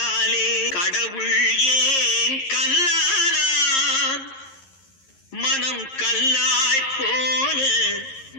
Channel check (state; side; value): late; right; 11 ms